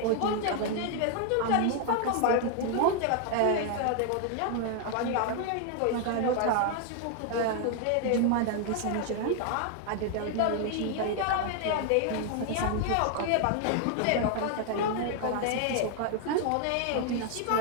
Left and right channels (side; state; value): both; different; correlation 0.00